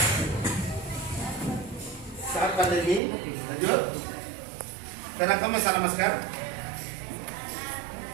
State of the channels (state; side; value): drops out; left; at 3.0 s